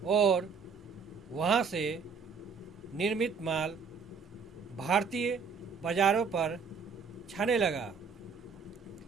और वहाँ से निर्मित माल भारतीय बाजारों पर छाने लगा।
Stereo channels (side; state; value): left; quieter; 5.5 dB